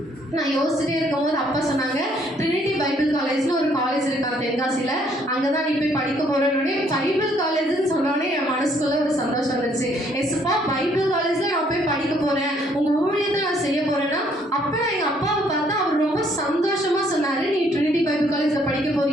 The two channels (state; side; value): normal; both; correlation 0.66